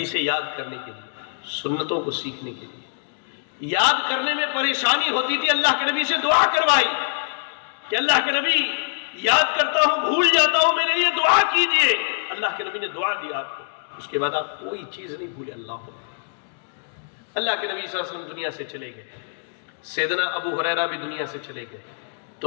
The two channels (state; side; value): silent; right; digital silence